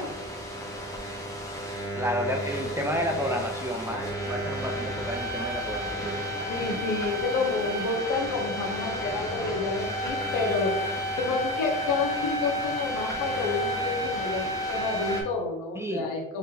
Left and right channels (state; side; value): normal; both; correlation 0.25